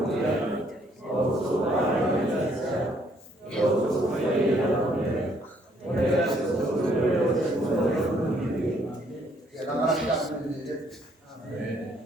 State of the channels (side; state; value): both; normal; correlation 0.67